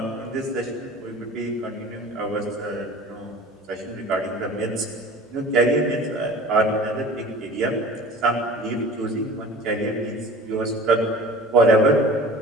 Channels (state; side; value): normal; both; correlation 0.41